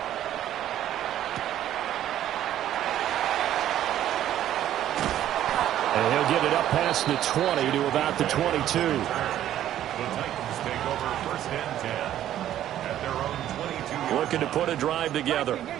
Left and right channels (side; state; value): left; quieter; 11.9 dB